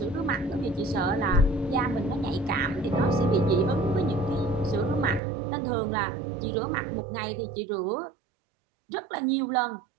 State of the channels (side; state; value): left; drops out; at 5.2 s